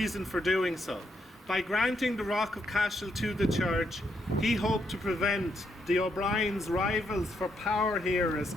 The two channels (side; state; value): both; normal; correlation 0.77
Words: for doing so. By granting the Rock of Cashel to the church, he hoped to prevent the O'Brien's rivals for power here as